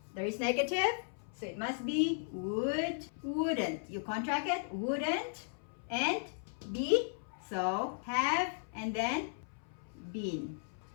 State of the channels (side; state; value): right; silent; 54 dB below the other